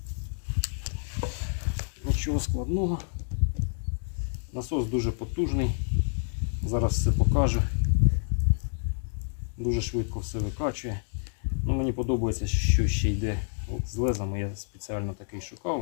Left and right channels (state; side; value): silent; right; digital silence